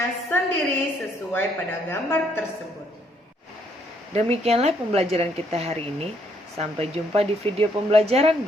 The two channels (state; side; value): normal; both; correlation 0.70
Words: sendiri sesuai pada gambar tersebut. Demikianlah pembelajaran kita hari ini. Sampai jumpa di video pembelajaran